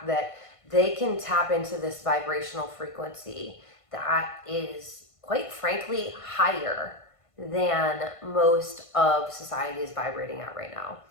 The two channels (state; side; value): late; right; 1.5 ms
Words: that they can tap into this vibrational frequency that is, quite frankly, higher than most of society is vibrating at right now.